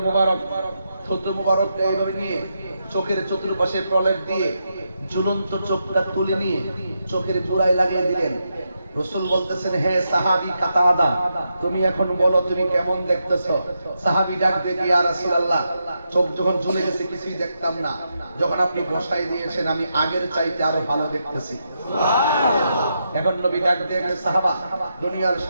মুবারক থুতু মুবারক এইভাবে নিয়ে চোখের চতুর্পাশে প্রলেপ দিয়ে ঝুলন্ত চোখটা তুলে নিয়ে চোখের গোড়ায় লাগিয়ে দিলেন। রাসূল বলতেছেন, হে সাহাবী কাতাদা, তুমি এখন বলো তুমি কেমন দেখতেছো? সাহাবী ডাক দিয়ে, ইয়া রাসূলুল্লাহ, চোখ যখন ঝুলে গেছে কিছুই দেখতাম না, যখন আপনি বসাই দিয়েছেন আমি আগের চাইতে আরো ভালো দেখতেছি। এখন নবী ডাক দিয়ে, সাহাবা, দুনিয়ার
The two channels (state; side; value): inverted; both; correlation -0.84